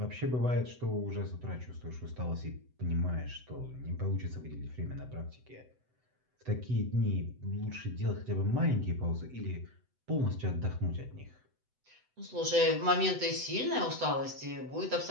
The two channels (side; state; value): left; late; 7.9 ms